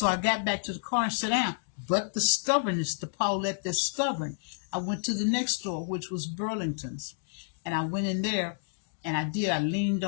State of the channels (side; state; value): right; silent; digital silence